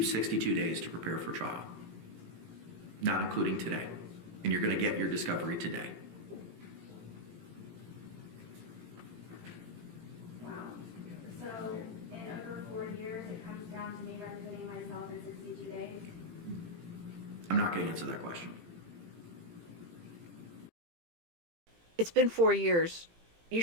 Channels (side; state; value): left; late; 18 ms